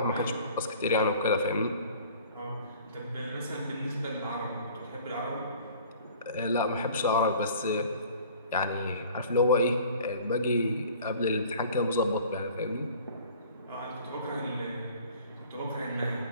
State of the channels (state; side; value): inverted; both; correlation -0.49